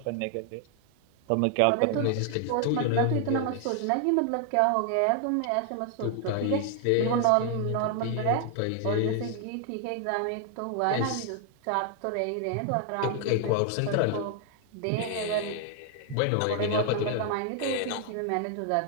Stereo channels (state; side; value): different; both; correlation 0.00